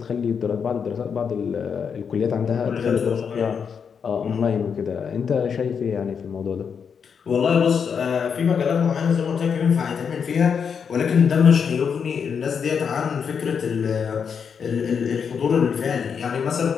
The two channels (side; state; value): right; quieter; 6.6 dB